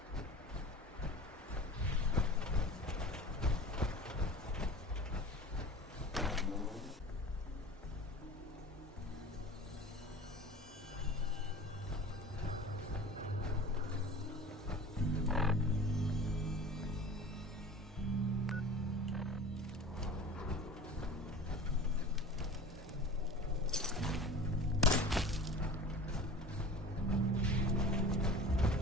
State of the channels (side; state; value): both; normal; correlation 0.39